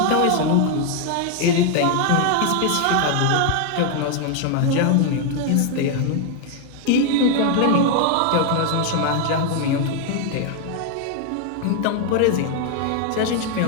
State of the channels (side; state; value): both; different; correlation 0.01